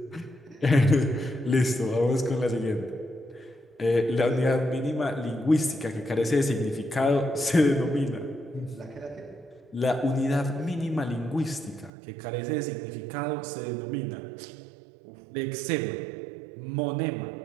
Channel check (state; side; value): drops out; left; at 11.9 s